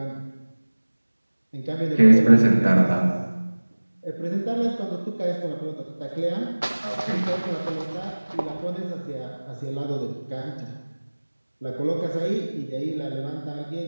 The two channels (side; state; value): both; inverted; correlation -1.00